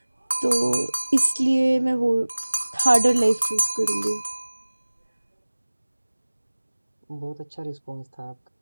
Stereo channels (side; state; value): both; inverted; correlation -1.00